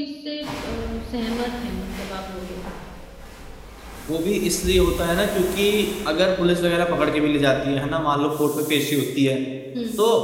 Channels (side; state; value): both; identical; correlation 1.00